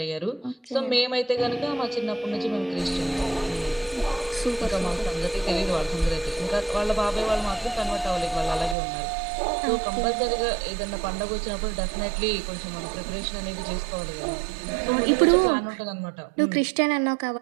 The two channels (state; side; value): drops out; left; at 8.8 s